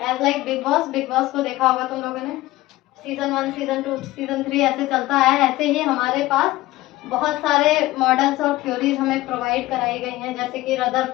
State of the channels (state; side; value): quieter; right; 17.7 dB